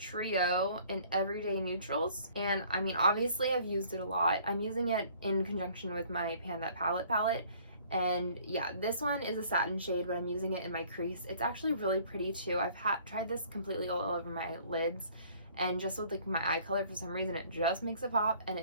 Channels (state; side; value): inverted; both; correlation -0.56